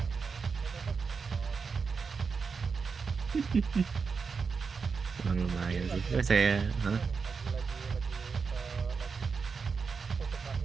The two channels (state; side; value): quieter; left; 5.3 dB